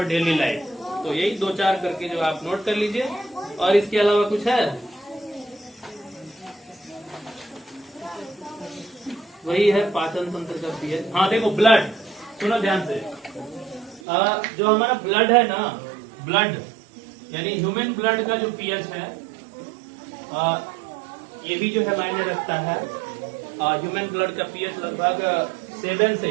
daily life, तो यही 2-4 करके जो आप नोट कर लीजिए। और इसके अलावा कुछ है, वही है पाचन तंत्र का पीएच। हाँ देखो, ब्लड, सुनो ध्यान से। जो हमारा ब्लड है ना, ब्लड यानी ह्यूमन ब्लड का जो पीएच है, ये भी जो है मायने रखता है। ह्यूमन ब्लड का पीएच लगभग 7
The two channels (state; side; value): drops out; left; at 14.0 s